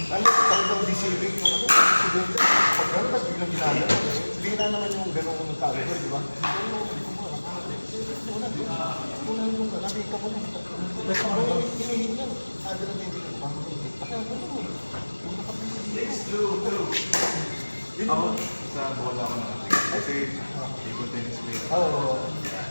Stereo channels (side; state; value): both; inverted; correlation -1.00